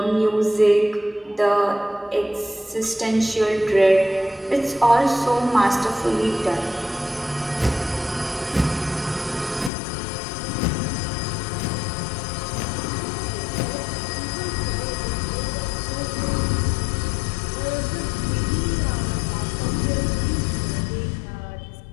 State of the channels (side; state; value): right; drops out; at 9.7 s